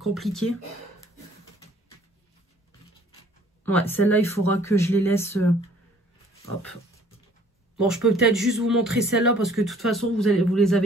Ouais, celle-là, il faudra que je les laisse... hop. Bon, je peux peut-être juste vous montrer celle-là parce que de toute façon, vous les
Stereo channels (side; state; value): both; normal; correlation 0.57